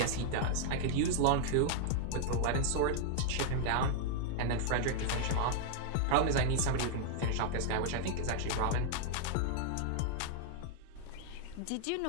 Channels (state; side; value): different; both; correlation -0.01